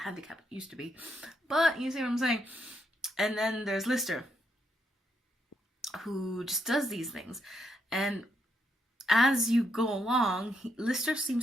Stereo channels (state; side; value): normal; both; correlation 0.78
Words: it used to be, but you see what I'm saying. And then there's Lister, who just does these things, and as you go along, Lister